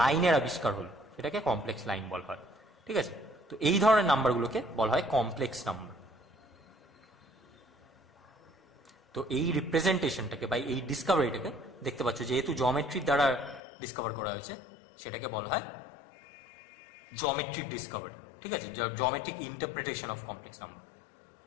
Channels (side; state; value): right; drops out; at 13.6 s